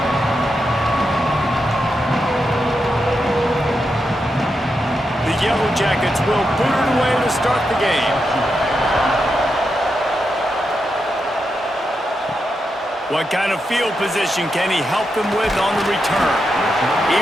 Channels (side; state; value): both; normal; correlation 0.86